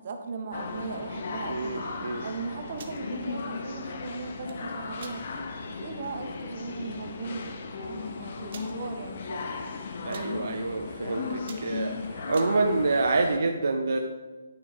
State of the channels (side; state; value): both; inverted; correlation -0.80